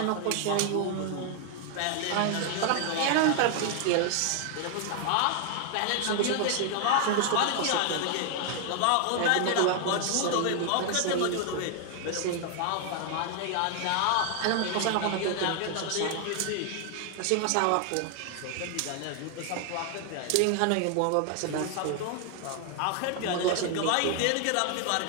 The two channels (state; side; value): different; both; correlation 0.00